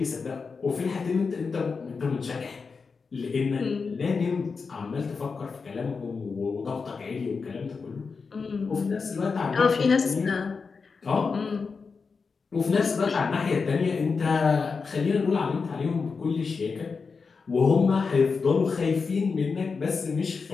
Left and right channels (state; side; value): quieter; right; 4.9 dB